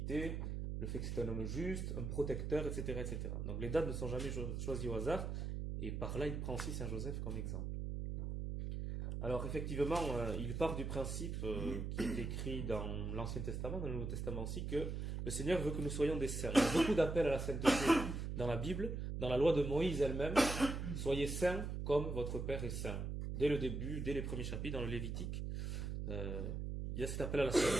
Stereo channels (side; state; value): right; noise; hum, 3 dB below the sound